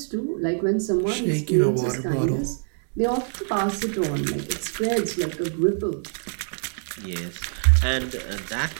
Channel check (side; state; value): left; silent; digital silence